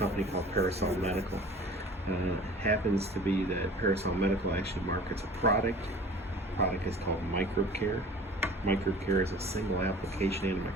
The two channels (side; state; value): both; normal; correlation 0.44